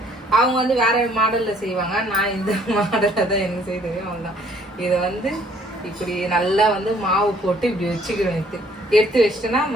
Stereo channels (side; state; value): both; normal; correlation 0.61